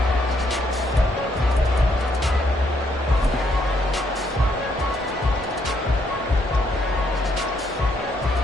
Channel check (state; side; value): normal; both; correlation 0.72